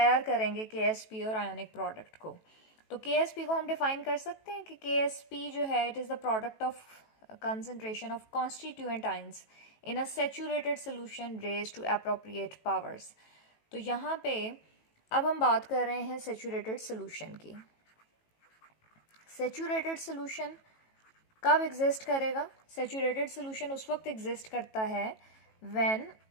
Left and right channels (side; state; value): right; late; 18 ms